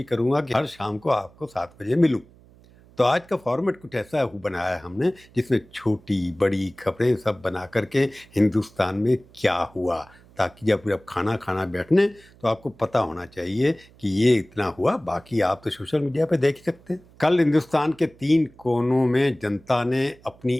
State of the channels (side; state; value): right; noise; hum, 26 dB below the sound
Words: करूँगा कि हर शाम को आपको 7 बजे मिलूँ। तो आज का फॉर्मेट कुछ ऐसा बनाया है हमने, जिसमें छोटी बड़ी खबरें सब बना करके हिंदुस्तान में क्या हुआ, ताकि जब खाना बैठने तो आपको पता होना चाहिए कि ये इतना हुआ। बाकी आप तो सोशल मीडिया पे देख ही सकते हैं। कल हिंदुस्तान के 3 कोनों में जनता ने अपनी